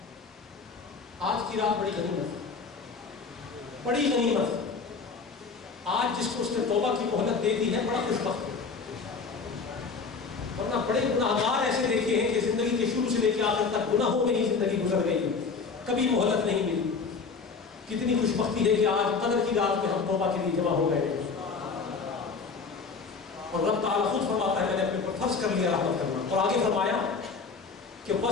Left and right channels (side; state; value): right; quieter; 4.9 dB